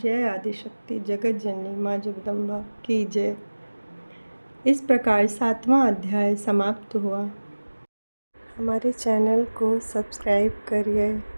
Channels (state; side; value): inverted; both; correlation -1.00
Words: आदिशक्ति जगत जननी माँ जगदम्बा की जय। इस प्रकार 7वां अध्याय समाप्त हुआ। हमारे चैनल को सब्सक्राइब करिए,